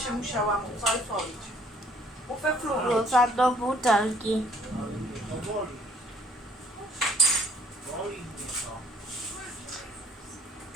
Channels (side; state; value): both; normal; correlation 0.61